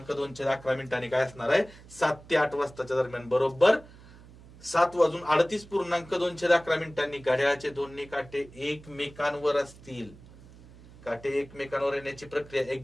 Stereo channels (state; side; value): noise; right; hum, 21 dB below the sound